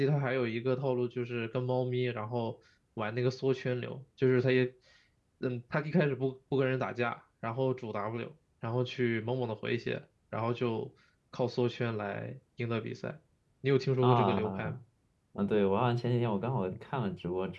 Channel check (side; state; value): both; identical; correlation 1.00